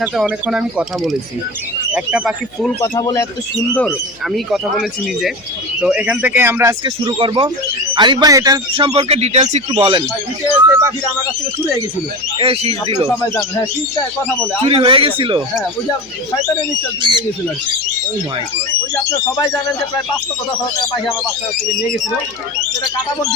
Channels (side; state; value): left; noise; hum, 30 dB below the sound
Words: অনেকক্ষণ আমি কথা বলেছি। একটা পাখি ফুল কথা বলে এত সুন্দর, আমি কথা বলেছি নিজে। তো এখান থেকে আমরা আজকে শুরু করব। আরিফ ভাই, এটার সম্পর্কে ডিটেলস একটু বলেন। আমার কাছ থেকে চুরি হয়ে গেছিল। এই শীষ দিল, সবাই জানেন। হ্যাঁ, শীষটা কথা বলে চুরি হয়ে গেছিল। হ্যাঁ, ওই যে শয়তানের নিশ্চয় চুরি হয়ে গেছিল আর কি। ও মাই গড। ওই যে আপনারা সবাই জানেন যে প্রায় 500 টাকা পাখি আমার বাচ্চা থেকে নিয়ে গেছিল। সেটা কাটাবন